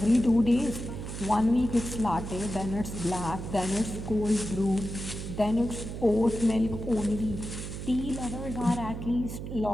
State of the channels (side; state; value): right; noise; hum, 7 dB below the sound